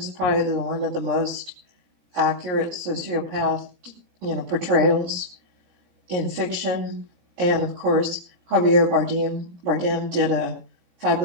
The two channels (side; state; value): left; late; 17 ms